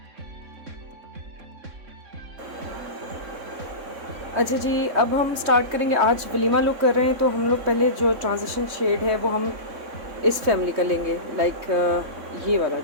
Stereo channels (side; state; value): left; late; 3.6 ms